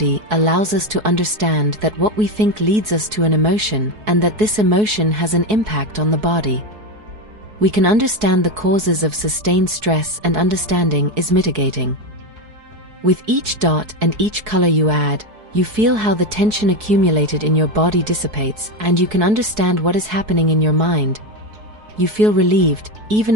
allows us to understand that what we think leads us to an emotion, and that this emotion has an impact on the body. We can understand the causes of sustained stress, and understanding is mitigating. With each dot and each color you add, you feel how the tension accumulated in your body dissipates, and you can understand what is happening in your mind. You feel relieved,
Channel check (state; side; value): late; left; 4.7 ms